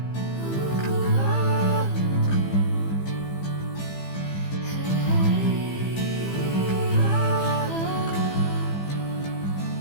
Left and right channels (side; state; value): right; late; 15 ms